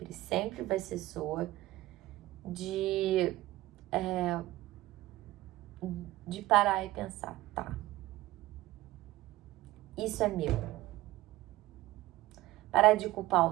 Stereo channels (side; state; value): left; quieter; 17.4 dB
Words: vai ser sua. De parar e pensar, tá, isso é meu. Parar de culpar